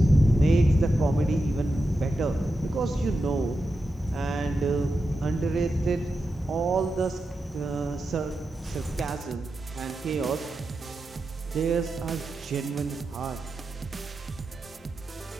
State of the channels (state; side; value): normal; both; correlation 0.89